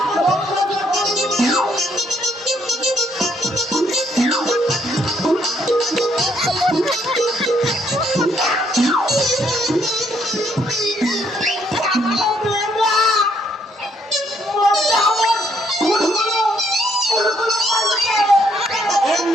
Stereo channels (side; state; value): both; normal; correlation 0.70